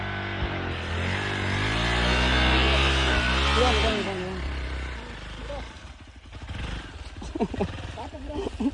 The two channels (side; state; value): both; identical; correlation 1.00